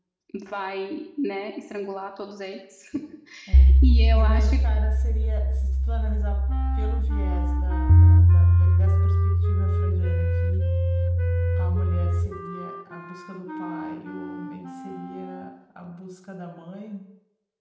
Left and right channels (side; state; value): both; identical; correlation 1.00